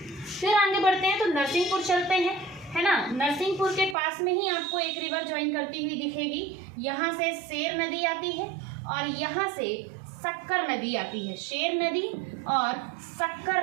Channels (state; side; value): drops out; left; at 4.0 s